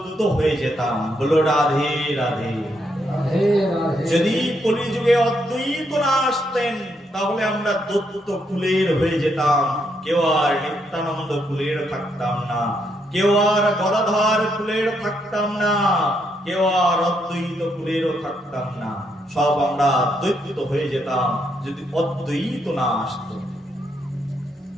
হয়ে যেতাম। বলো রাধে রাধে। যদি কলিযুগে অদ্বৈত না আসতেন, তাহলে আমরা দৈত্য কুলের হয়ে যেতাম। কেউ আর নিত্যানন্দ কুলের থাকতাম না, কেউ আর গদাধর কুলের থাকতাম না, কেউ আর অদ্বৈত কুলেরও থাকতাম না, সব আমরা দ্বৈত হয়ে যেতাম যদি অদ্বৈত না আসতো।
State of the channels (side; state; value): both; normal; correlation 0.77